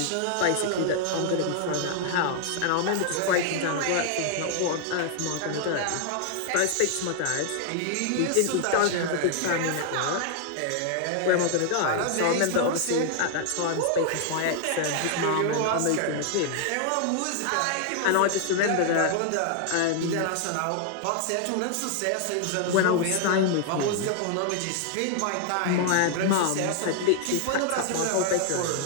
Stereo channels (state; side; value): different; both; correlation 0.00